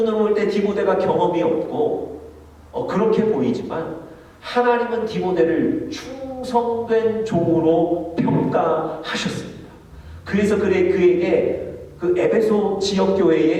볼 때 디모데가 경험이 없고, 그렇게 보이지만 하나님은 디모데를 충성된 종으로 평가하셨습니다. 그래서 그에게 그 에베소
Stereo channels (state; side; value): identical; both; correlation 1.00